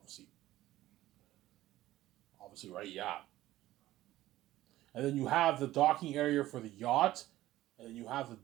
Obviously, right? Yeah. And then you have the docking area for the yacht, and then you have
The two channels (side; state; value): left; quieter; 15.4 dB